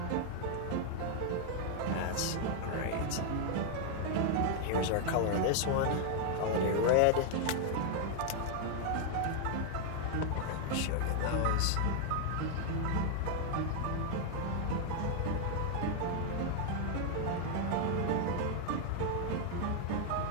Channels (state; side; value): different; both; correlation 0.00